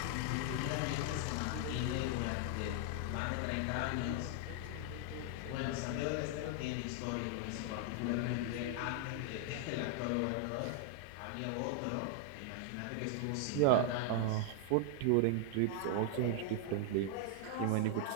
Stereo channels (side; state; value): both; different; correlation 0.00